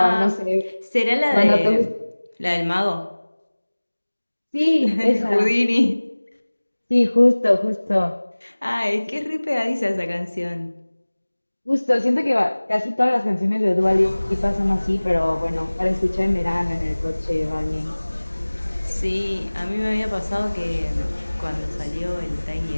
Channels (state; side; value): inverted; both; correlation -1.00